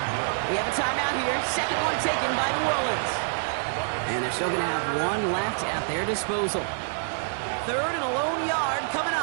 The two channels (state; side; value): silent; left; digital silence